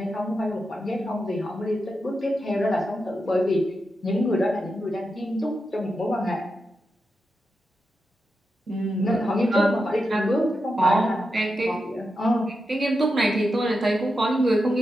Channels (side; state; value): both; normal; correlation 0.88